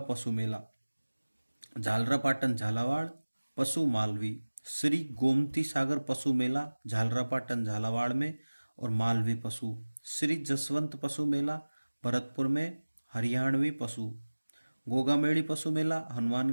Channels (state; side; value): inverted; both; correlation -1.00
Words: पशु मेला झालरापाटन झालावाड़ पशु मालवी। श्री गोमती सागर पशु मेला झालरापाटन झालावाड़ में और मालवी पशु। श्री जसवंत पशु मेला भरतपुर में हरियाणवी पशु। गोगामेड़ी पशु मेला